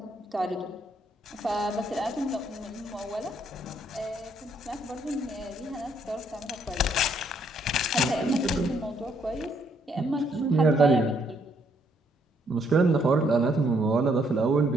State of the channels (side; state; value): both; normal; correlation 0.70